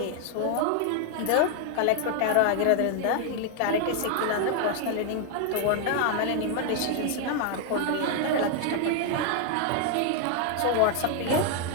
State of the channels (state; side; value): different; both; correlation 0.00